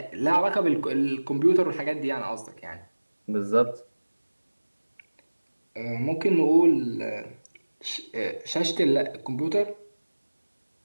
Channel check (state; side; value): inverted; both; correlation -1.00